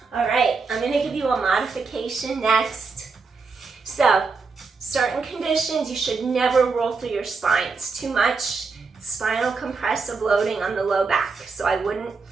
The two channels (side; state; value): left; quieter; 4.6 dB